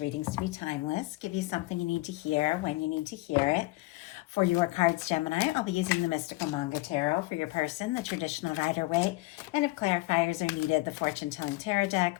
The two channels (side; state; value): right; quieter; 21.0 dB